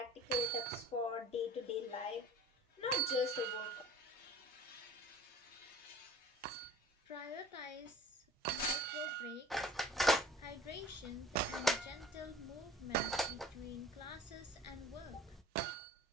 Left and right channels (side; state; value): both; normal; correlation 0.47